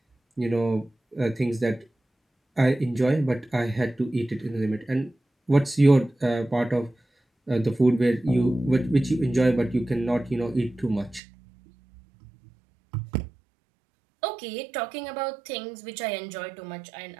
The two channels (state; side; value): drops out; left; at 11.2 s